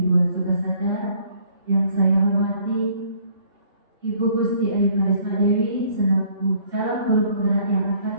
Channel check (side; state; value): left; late; 3.3 ms